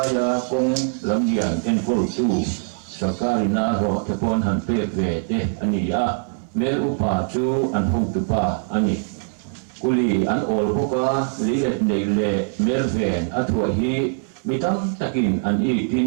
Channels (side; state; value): left; silent; digital silence